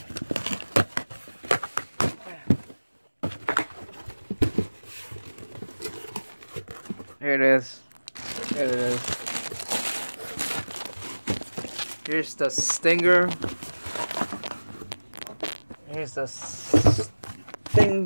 Here it is. Here it is. Here's the stinger. Here's the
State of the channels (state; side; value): inverted; both; correlation -1.00